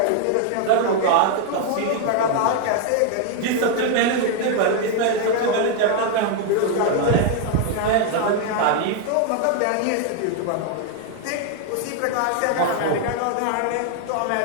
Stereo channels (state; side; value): different; both; correlation 0.00